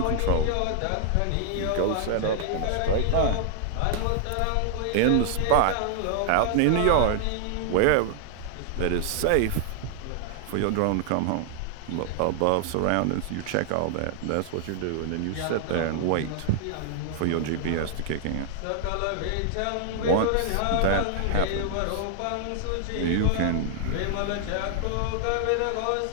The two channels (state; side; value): different; both; correlation 0.00